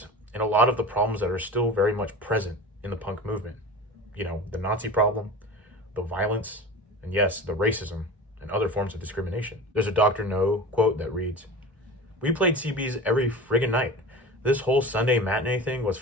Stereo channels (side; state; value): both; normal; correlation 0.34